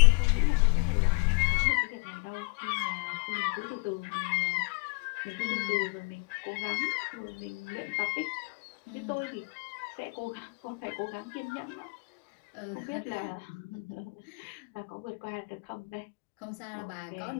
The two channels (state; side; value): quieter; right; 34.2 dB